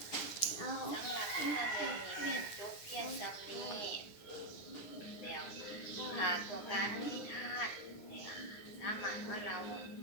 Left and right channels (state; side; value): late; right; 9.8 ms